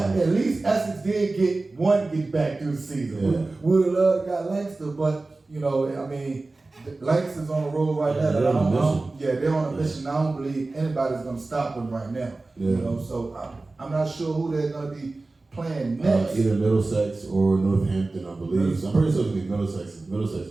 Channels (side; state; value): left; quieter; 3.3 dB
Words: least Essex did get back through the season. We would have loved to got Lancaster, but I mean, Lancaster's on the road right now. They're on a mission. I don't believe anybody's gonna stop them right now. So I'm not sure who they're gonna be playing next. Either Middlesex or Northampton, I believe. So I'm pretty sure it's gonna be Middlesex. Middlesex